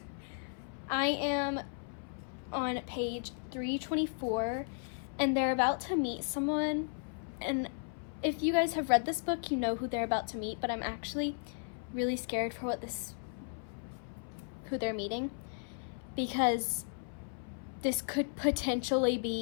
I am on page 324, and they're about to meet someone. And if you guys have read this book, you know who they're about to meet, but I'm actually really scared for who they're meeting, because this could potentially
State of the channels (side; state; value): right; silent; 54 dB below the other